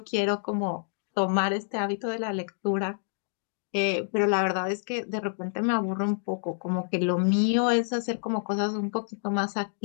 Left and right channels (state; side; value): silent; right; digital silence